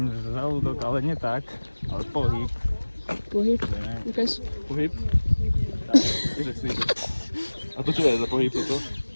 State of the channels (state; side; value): inverted; both; correlation -1.00